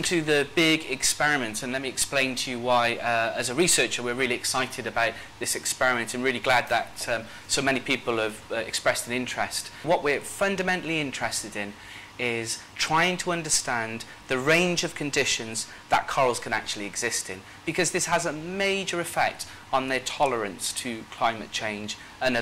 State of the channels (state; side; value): identical; both; correlation 1.00